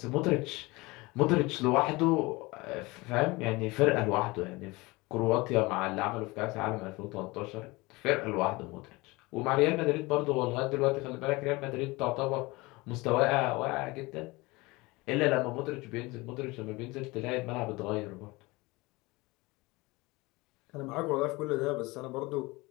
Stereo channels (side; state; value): right; quieter; 23.0 dB